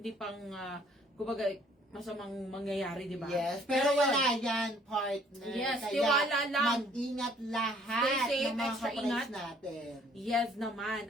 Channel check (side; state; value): both; normal; correlation 0.60